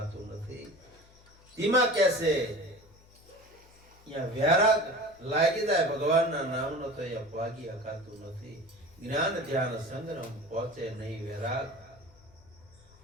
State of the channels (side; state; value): left; noise; hum, 26 dB below the sound